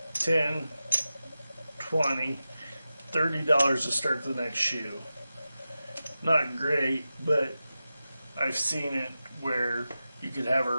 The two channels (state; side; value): inverted; both; correlation -0.93